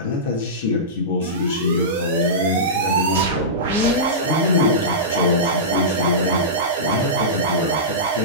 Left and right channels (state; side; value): normal; both; correlation -0.17